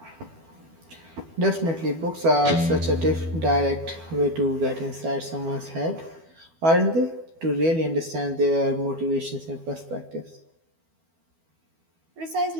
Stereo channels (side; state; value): left; late; 12 ms